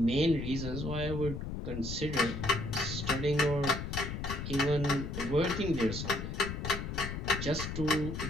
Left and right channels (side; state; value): left; noise; rumble, 5 dB below the sound